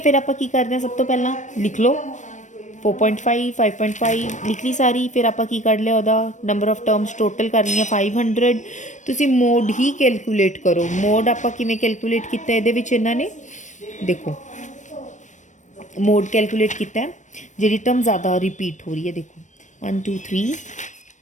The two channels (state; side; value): late; right; 0.35 ms